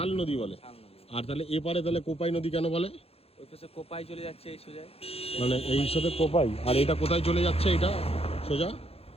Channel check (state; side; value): late; right; 0.29 ms